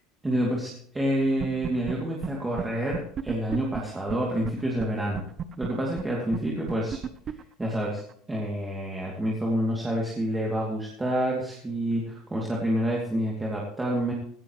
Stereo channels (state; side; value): normal; both; correlation 0.73